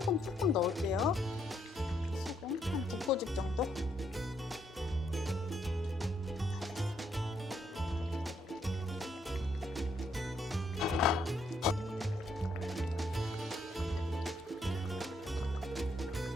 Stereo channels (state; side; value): normal; both; correlation 0.74